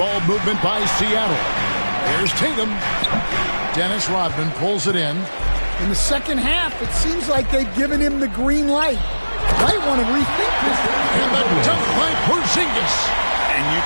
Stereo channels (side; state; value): both; inverted; correlation -1.00